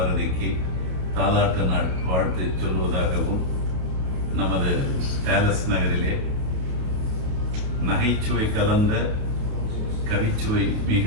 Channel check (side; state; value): left; late; 28 ms